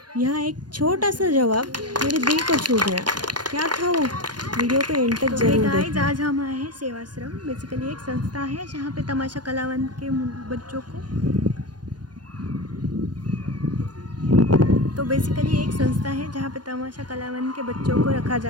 यहाँ एक छोटा सा जवाब मेरे दिल को छू गया। क्या था वो? वीडियो को एंड तक जरूर देखना। आज हम आए हैं सेवाश्रम। बेसिकली एक संस्था है जहाँ पे तमाशा कलावंत के बच्चों को रखा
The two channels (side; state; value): left; late; 0.70 ms